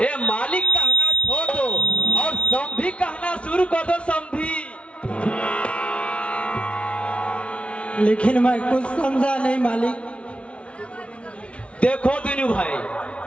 ये मालिक कहना छोड़ दो और समधी कहना शुरू कर दो। समधी। लेकिन मैं कुछ समझा नहीं मालिक। देखो दिनू भाई,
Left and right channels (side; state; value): right; late; 0.061 ms